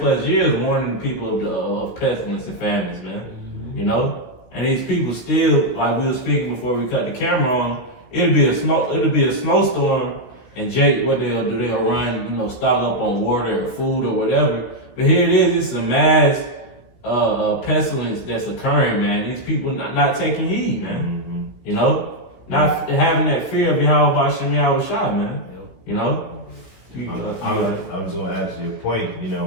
years, warning the people of pestilence and famines, man. You know, and these people still, like we were speaking before we cut the camera on, it'll be a snowstorm, and Jake, what they'll do, they'll run, you know, stock up on water or food or whatever. But here it is, it's a mass pestilence that's occurring, man. These people not taking heed, man. You know, not having that fear of Yahweh Bashem Yahweh Shah, man. You know, I was going to add to your point. You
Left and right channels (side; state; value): right; late; 16 ms